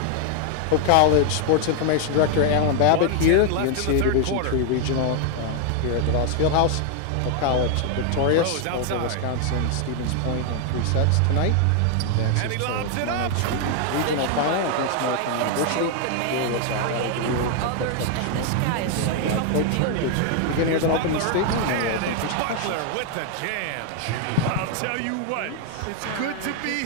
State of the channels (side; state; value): both; different; correlation 0.00